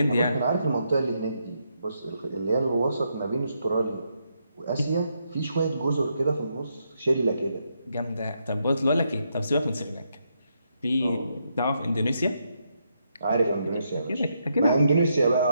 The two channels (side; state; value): both; inverted; correlation -0.79